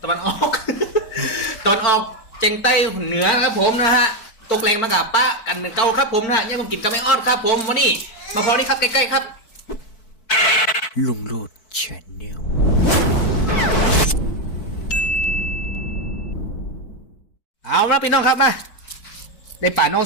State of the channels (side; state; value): right; late; 4.6 ms